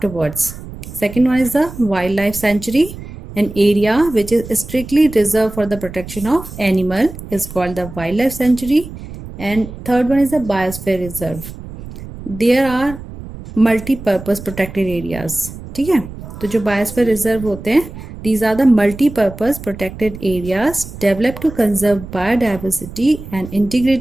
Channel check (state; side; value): noise; right; rumble, 13 dB below the sound